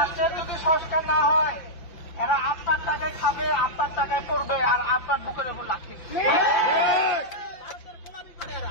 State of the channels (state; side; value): late; right; 5.8 ms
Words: যদি সংস্কার না হয় এরা আপনার টাকায় খাবে, আপনার টাকায় পড়বে, আর আপনার বুকের উপর লাঠি